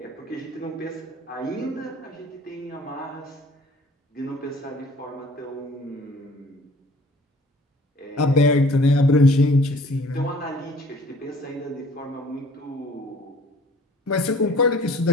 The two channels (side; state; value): both; normal; correlation 0.52